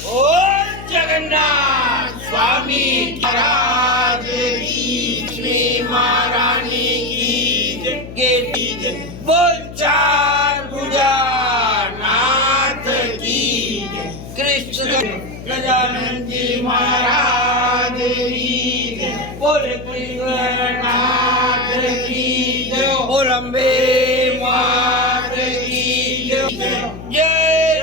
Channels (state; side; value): noise; left; hum, 13 dB below the sound